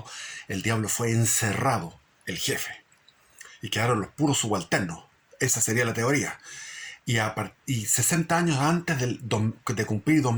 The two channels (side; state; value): both; identical; correlation 1.00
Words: el diablo fue encerrado, el jefe, y quedaron los puros subalternos. Esa sería la teoría. Y 60 años antes de cumplir